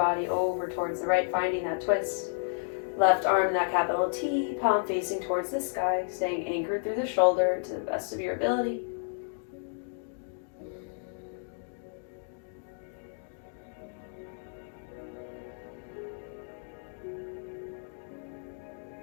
over towards the right, finding that twist. Left arm in that capital T, palm facing towards the sky, staying anchored through the shoulder to the best of your ability.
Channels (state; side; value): silent; right; digital silence